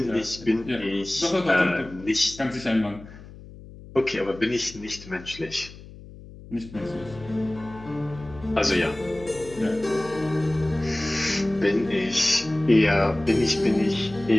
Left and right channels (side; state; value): left; noise; hum, 17 dB below the sound